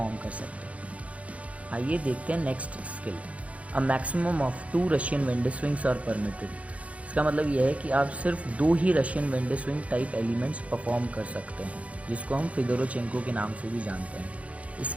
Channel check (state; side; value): late; left; 0.065 ms